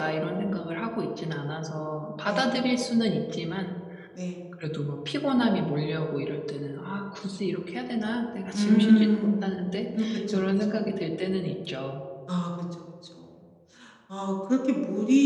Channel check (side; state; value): both; identical; correlation 1.00